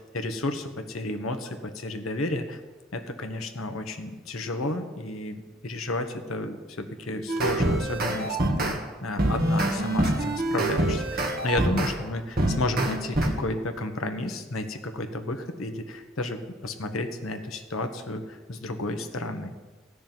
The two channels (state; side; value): normal; both; correlation 0.55